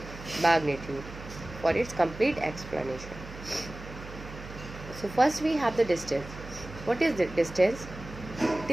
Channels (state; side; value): noise; right; hum, 13 dB below the sound